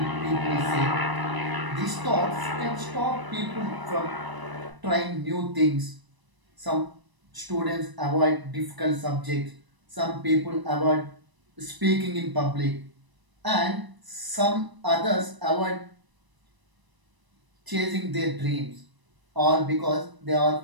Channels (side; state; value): left; late; 1.0 ms